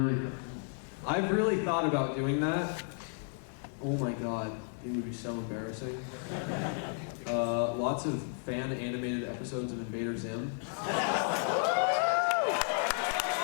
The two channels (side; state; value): right; silent; 56 dB below the other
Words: really thought about doing that. Oh my god, it would be so embarrassing. Lots of fan animated episodes of Invader Zim.